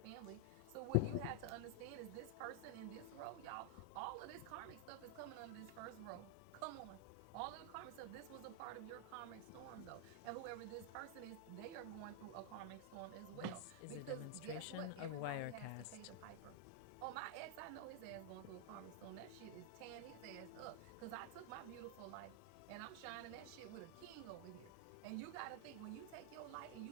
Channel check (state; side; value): different; both; correlation 0.00